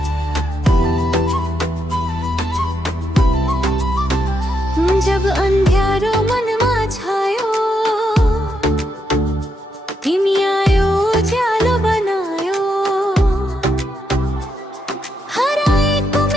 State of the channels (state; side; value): normal; both; correlation 0.80